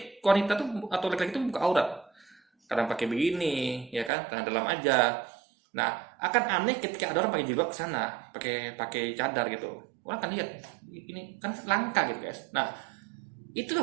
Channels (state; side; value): drops out; left; at 4.1 s